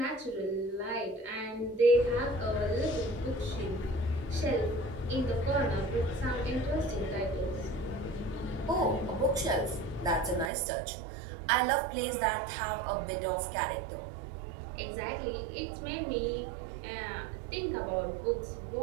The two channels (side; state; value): left; drops out; at 10.5 s